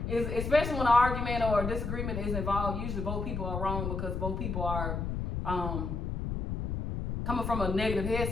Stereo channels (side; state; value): left; noise; rumble, 3 dB below the sound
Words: It's, especially when an argument or a disagreement is involved, usually both people are wrong because both people are coming from a negative